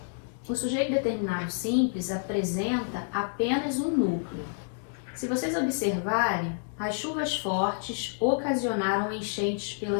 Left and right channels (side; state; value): right; silent; digital silence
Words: o sujeito determinado simples apresenta apenas um núcleo. Se vocês observarem, as chuvas fortes ocasionaram enchentes